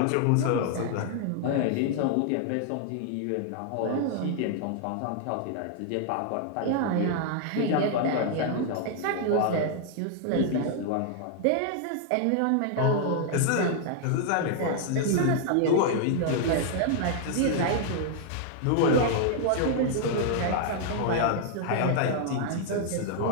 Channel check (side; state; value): both; different; correlation 0.00